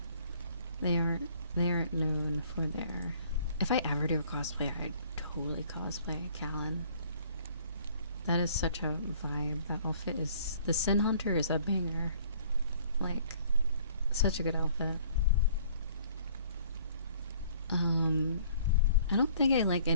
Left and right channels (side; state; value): both; inverted; correlation -0.56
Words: They aren't known for their. If I ever do a cosplay, I'd totally cosplay Callan. That is such a vibe. That outfit is. The Sin Hunter is a banger. Like, such a good outfit. I don't think I like